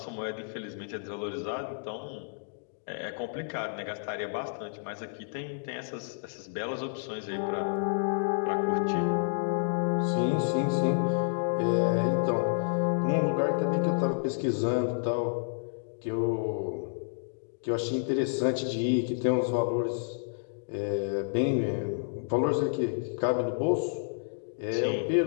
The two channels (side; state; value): right; silent; digital silence